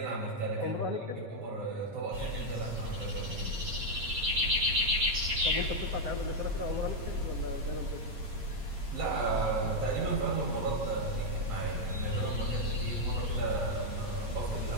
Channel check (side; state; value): left; late; 8.7 ms